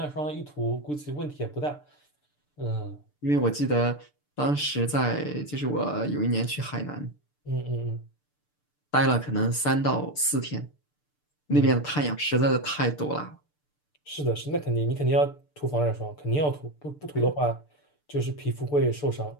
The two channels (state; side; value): late; right; 6.8 ms